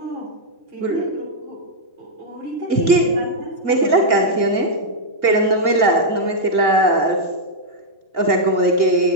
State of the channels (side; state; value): left; late; 1.8 ms